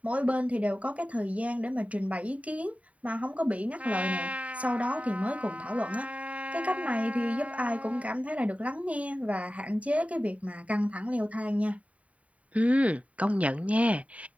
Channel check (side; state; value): left; late; 0.067 ms